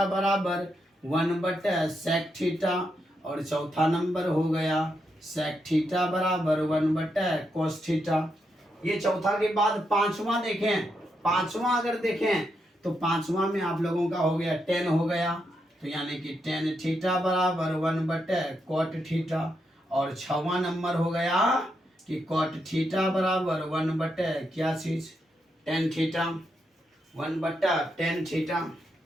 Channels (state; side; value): normal; both; correlation 0.82